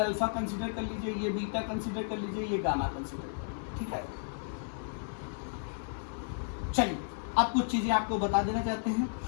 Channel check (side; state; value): right; silent; digital silence